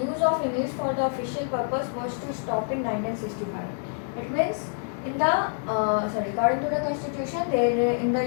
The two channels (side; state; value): right; silent; digital silence